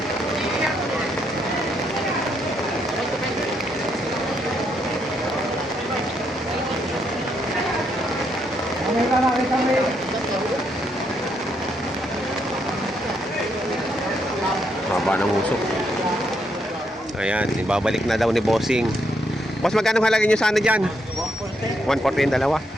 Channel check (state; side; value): normal; both; correlation 0.76